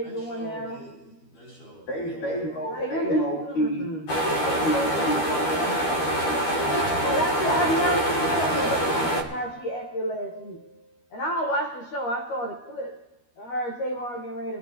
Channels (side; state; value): right; late; 13 ms